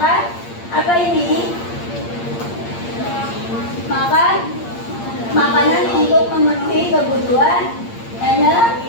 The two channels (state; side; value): late; right; 8.7 ms